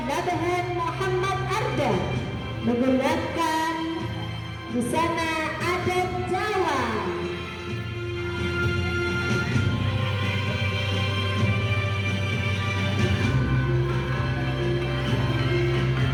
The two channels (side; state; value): both; identical; correlation 1.00